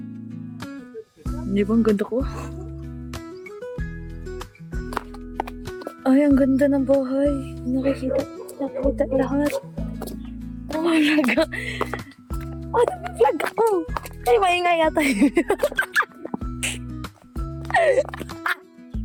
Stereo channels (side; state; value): both; identical; correlation 1.00